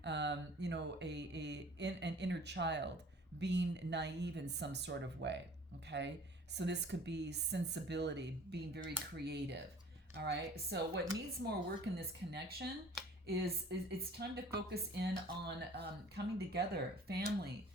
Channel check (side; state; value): both; normal; correlation 0.48